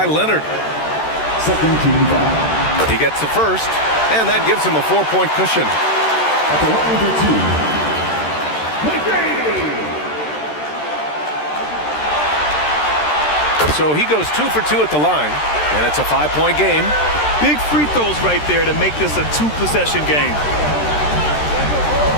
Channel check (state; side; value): late; right; 13 ms